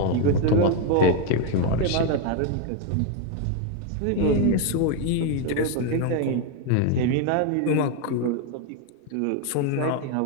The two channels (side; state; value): both; different; correlation 0.01